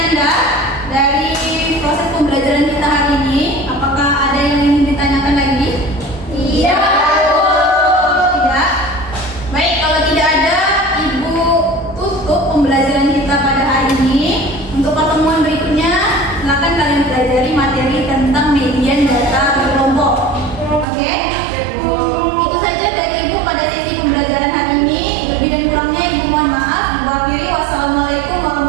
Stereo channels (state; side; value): drops out; left; at 20.9 s